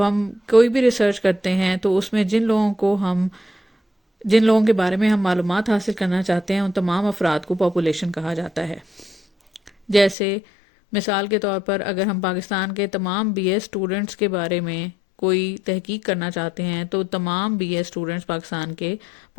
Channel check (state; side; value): drops out; right; at 10.2 s